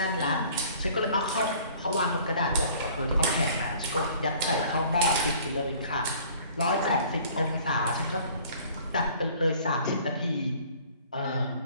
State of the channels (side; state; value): both; inverted; correlation -0.52